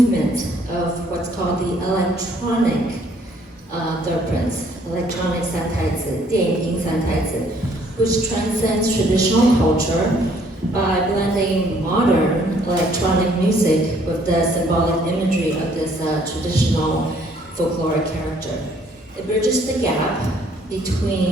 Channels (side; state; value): both; normal; correlation 0.63